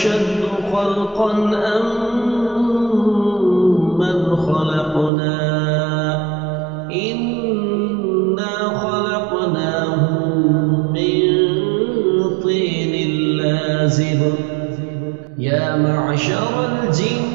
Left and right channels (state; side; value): drops out; left; at 5.1 s